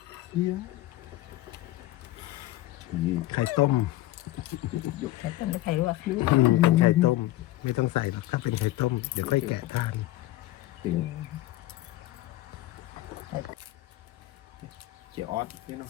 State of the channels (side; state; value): right; quieter; 16.2 dB